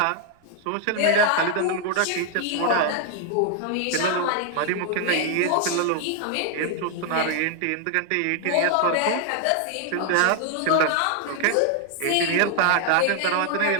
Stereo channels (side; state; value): both; different; correlation 0.00